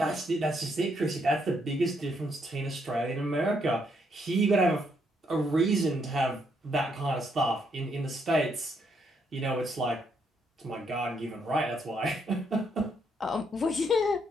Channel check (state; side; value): normal; both; correlation 0.74